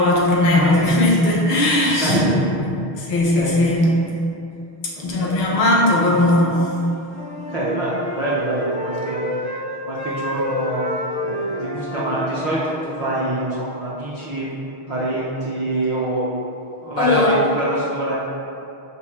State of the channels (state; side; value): late; right; 6.4 ms